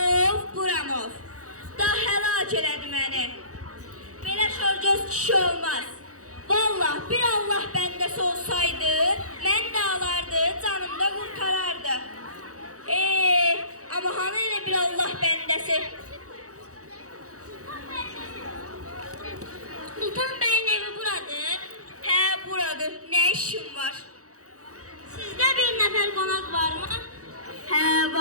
buramov. Daha həlak elədi məni. Belə şorgöz kişi olmaz. Vallah bir Allah bəndəsi olsaydı, mən də alardı, canım da qurtarardı. Ama hanı elə bir Allah bəndəsi? Sultan Bey'in evi buradır. He buradır. Ne işin var? Sizde bir nefer konak var mı? He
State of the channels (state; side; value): late; left; 0.66 ms